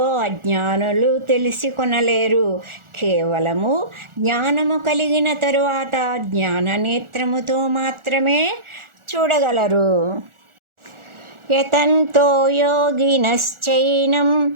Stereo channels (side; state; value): left; late; 1.4 ms